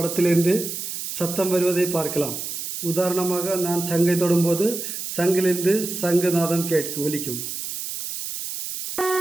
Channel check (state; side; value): noise; right; hiss, 6 dB below the sound